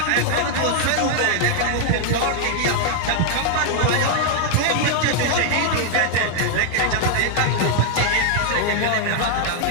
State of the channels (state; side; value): different; both; correlation 0.00